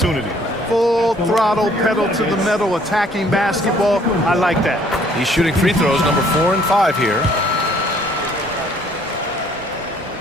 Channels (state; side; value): normal; both; correlation 0.60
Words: Full throttle, pedal to the metal, attacking basketball. I like that. He's shooting free throws number 4 and 5 here.